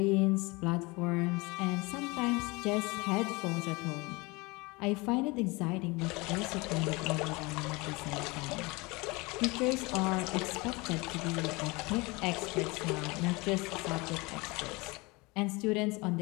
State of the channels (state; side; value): quieter; right; 25.1 dB